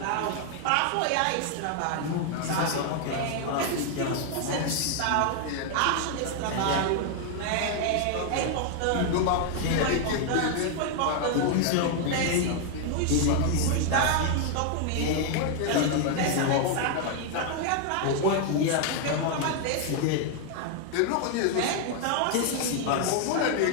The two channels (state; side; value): different; both; correlation 0.00